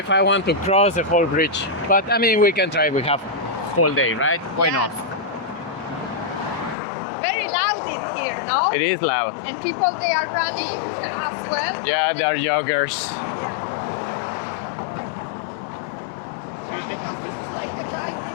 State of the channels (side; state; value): right; drops out; at 6.8 s